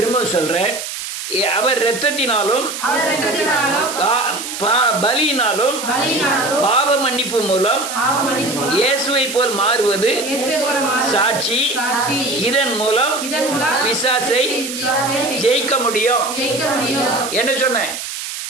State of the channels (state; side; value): noise; right; hiss, 7 dB below the sound